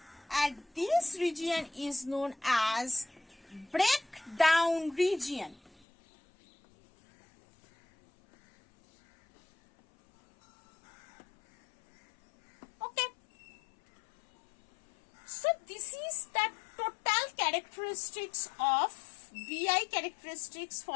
and this region is known as breakdown region. So this is the total characteristics of VI characteristics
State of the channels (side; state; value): right; drops out; at 5.8 s